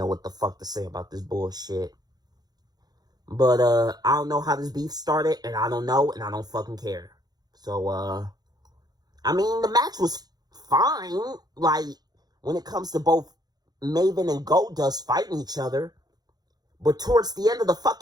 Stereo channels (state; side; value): late; left; 0.19 ms